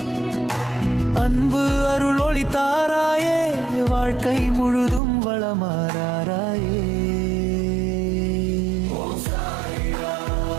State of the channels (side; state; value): left; drops out; at 5.0 s